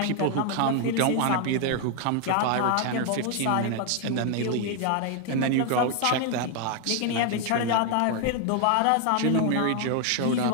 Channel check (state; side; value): different; both; correlation 0.00